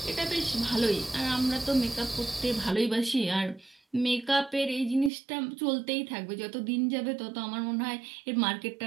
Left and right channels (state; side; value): drops out; left; at 5.1 s